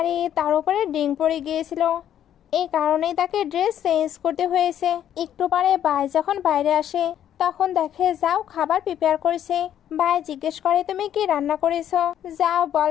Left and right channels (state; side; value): quieter; right; 10.5 dB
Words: তার উপরে ডিং পড়ে গিয়েছিল, এই কারণেই তাকে ড্রেস চেঞ্জ করতে হয়েছে। একটু পরে ভাই যখন বাইরে আসে তখন দেখে যাও খাবার প্রিপেয়ার করেছে। ভাই জিজ্ঞেস করে তুমি কি রান্না করেছো। যাও